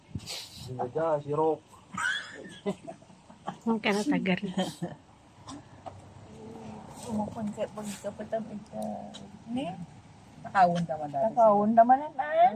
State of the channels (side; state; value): both; identical; correlation 1.00